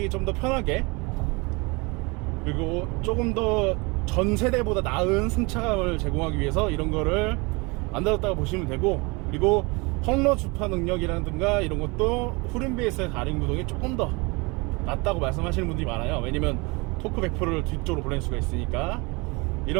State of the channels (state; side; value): quieter; left; 27.2 dB